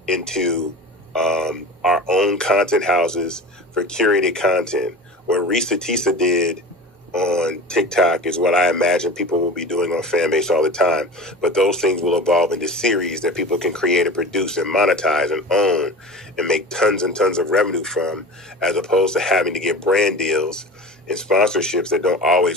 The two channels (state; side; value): normal; both; correlation 0.34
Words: into our own content houses for curated content. What Risa Tisa did on TikTok is what I imagine people will be doing on Fanbase all the time. But those things will evolve into series that people can create and produce and monetize and own and make tons and tons of revenue from, as opposed to having to get brand deals and sponsorships that don't